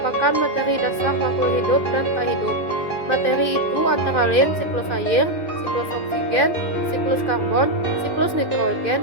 materi dasar makhluk hidup dan tak hidup. Materi itu antara lain siklus air, siklus oksigen, siklus karbon, siklus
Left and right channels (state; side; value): late; right; 2.3 ms